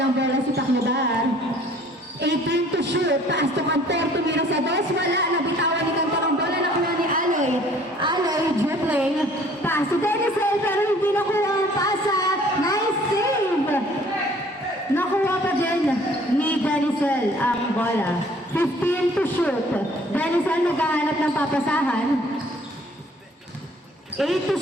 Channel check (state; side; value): normal; both; correlation 0.55